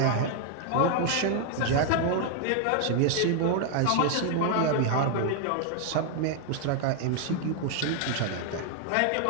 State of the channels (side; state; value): both; different; correlation 0.00